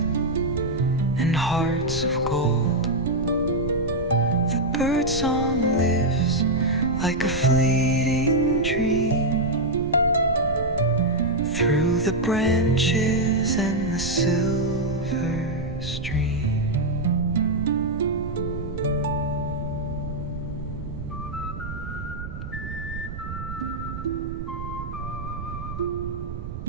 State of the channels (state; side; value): noise; right; rumble, 8 dB below the sound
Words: and hearts of gold. The bird song lives like a fleeting dream through the branches and the silver stream.